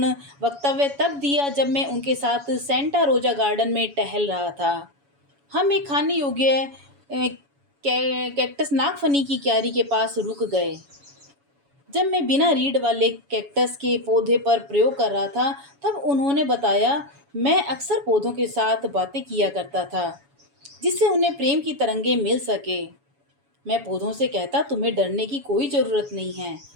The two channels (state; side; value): late; left; 7.1 ms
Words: वक्तव्य तब दिया जब मैं उनके साथ सेंटा रोजा गार्डन में टहल रहा था। हम एक खाने योग्य कैक्टस नागफनी की क्यारी के पास रुक गए। जब मैं बिना रीढ़ वाले कैक्टस के पौधे पर प्रयोग कर रहा था तब उन्होंने बताया, मैं अक्सर पौधों के साथ बातें किया करता था जिससे उन्हें प्रेम की तरंगें मिल सके। मैं पौधों से कहता, तुम्हें डरने की कोई ज़रूरत नहीं है।